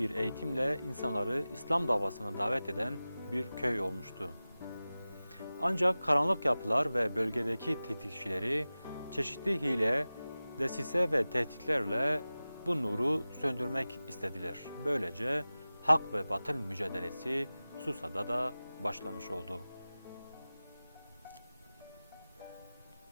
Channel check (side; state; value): both; inverted; correlation -0.97